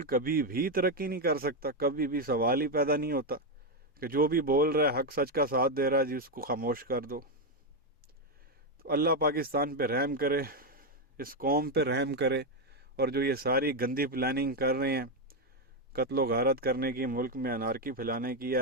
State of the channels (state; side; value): normal; both; correlation 0.05